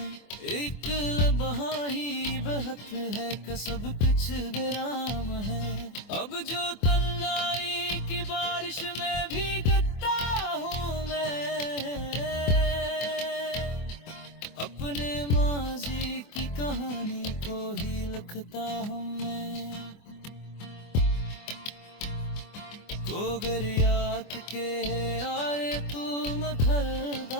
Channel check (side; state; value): right; late; 24 ms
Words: एक लम्हा ही बहत है कि सब कुछ विराम है। अब जो तन्हाई की बारिश में भीगता हूँ मैं, अपने माजी की कहानी को ही लिखता हूँ मैं। गोगरियात के यारे तू